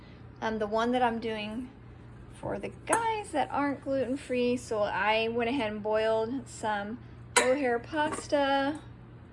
The one that I'm doing for the guys that aren't gluten-free, so I went ahead and boiled some mohair pasta.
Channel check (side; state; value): both; identical; correlation 1.00